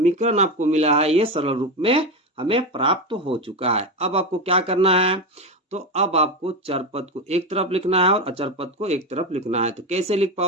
आपको मिला है ये सरल रूप में हमें प्राप्त हो चुका है। अब आपको क्या करना है? तो अब आपको चर पद को एक तरफ लिखना है और अचर पद को एक तरफ लिखना है। तो कैसे लिख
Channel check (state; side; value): normal; both; correlation 0.16